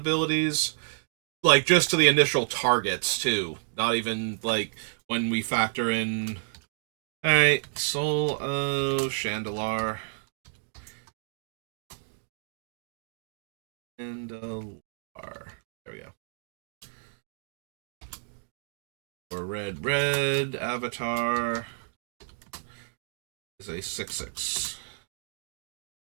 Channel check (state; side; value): silent; left; digital silence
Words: Like, just to the initial targets, too. Not even, like, when we factor in... Alright, Soul of Chandelar. Chandelar. There we go. For red, Avatar is a 6/6.